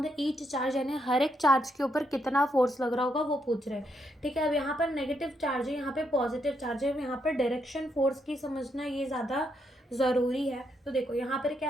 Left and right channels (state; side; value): normal; both; correlation 0.78